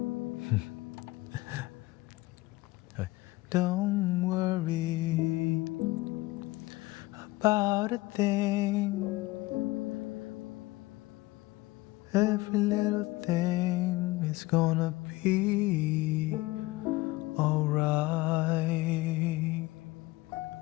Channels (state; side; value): quieter; right; 19.9 dB